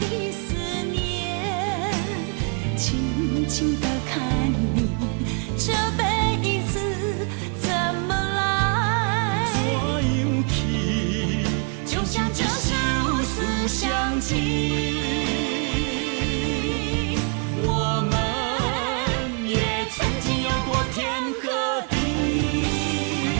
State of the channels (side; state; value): left; quieter; 38.2 dB